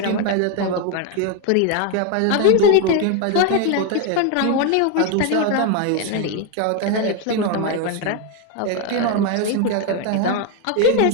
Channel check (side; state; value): both; different; correlation 0.02